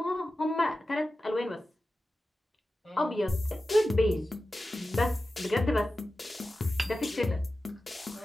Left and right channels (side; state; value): both; normal; correlation 0.94